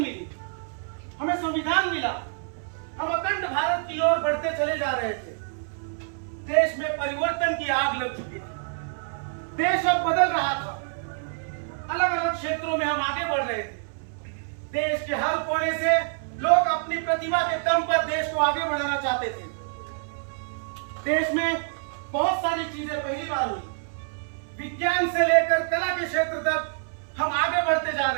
हमें संविधान मिला, हम अखंड भारत की ओर बढ़ते चले जा रहे थे। देश में परिवर्तन की आग लग चुकी थी, देश अब बदल रहा था। अलग अलग क्षेत्रों में हम आगे बढ़ रहे थे। देश के हर कोने से लोग अपनी प्रतिभा के दम पर देश को आगे बढ़ाना चाहते थे। देश में बहुत सारी चीजें पहली बार हुई। विज्ञान से लेकर कला के क्षेत्र तक हम आगे बढ़ते जा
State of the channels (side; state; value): left; silent; 60 dB below the other